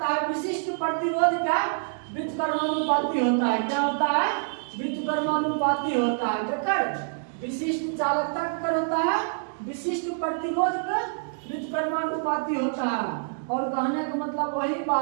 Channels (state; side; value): silent; left; digital silence